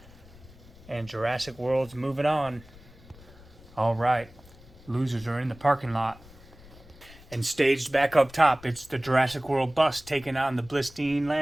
And Jurassic World's moving on. All right, losers are in the parking lot. And staged back up top, it's the Jurassic World bus taking on the Blistine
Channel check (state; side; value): noise; left; rumble, 22 dB below the sound